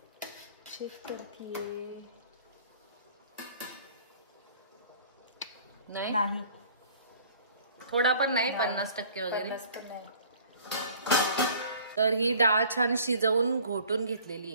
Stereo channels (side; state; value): both; inverted; correlation -0.51